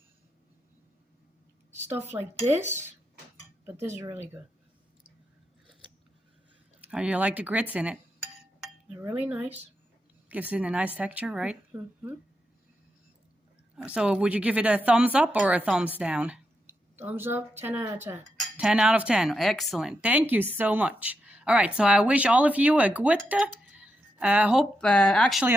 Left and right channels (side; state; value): both; normal; correlation 0.84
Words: stuff like this, but this is really good. How do you like the grits in it? They're really nice. Gives it a nice texture, right? Mm-hmm. So would you give it a thumbs up or a thumbs down? Thumbs up, 10 out of 10. 10 out of 10. Excellent. Thank you so much. All right, so I wish all of you a gute. I hope